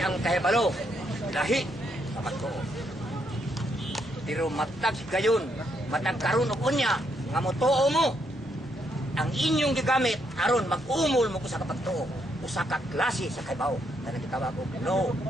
ang kahibalo lahi sa magtuo. Pero matag gayon, matag karon og unya nga motuo mo ang inyong gigamit aron mag-umol mo ko sa kapagtuo usa ka klase sa kaybaw na nagitawag og no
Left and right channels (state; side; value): normal; both; correlation 0.76